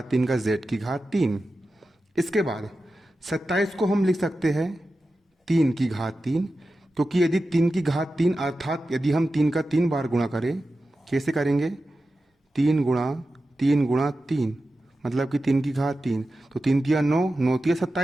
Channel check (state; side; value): normal; both; correlation 0.93